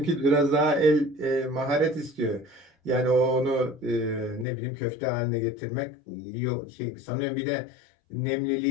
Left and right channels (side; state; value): right; drops out; at 4.5 s